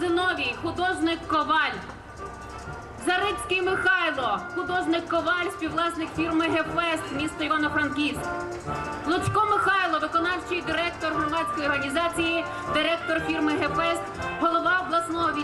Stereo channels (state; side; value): identical; both; correlation 1.00